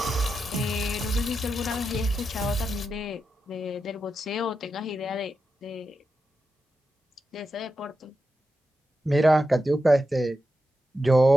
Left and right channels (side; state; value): both; normal; correlation 0.88